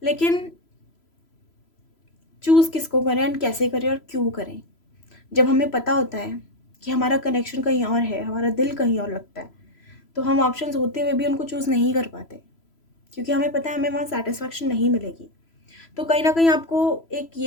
लेकिन चूज़ किसको करें एंड कैसे करें और क्यों करें। जब हमें पता होता है कि हमारा कनेक्शन कहीं और है, हमारा दिल कहीं और लगता है, तो हम ऑप्शंस होते हुए भी उनको चूज़ नहीं कर पाते, क्योंकि हमें पता है हमें वहाँ सेटिस्फैक्शन नहीं मिलेगी। तो कहीं ना कहीं आपको एक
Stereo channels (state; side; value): late; right; 3.0 ms